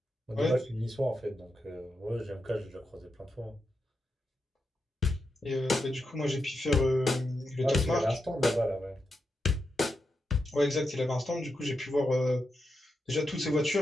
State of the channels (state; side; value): normal; both; correlation 0.86